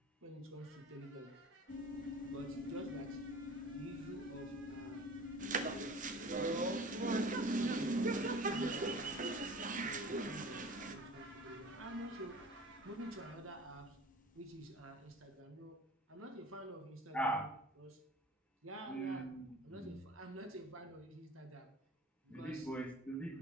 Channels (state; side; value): normal; both; correlation 0.41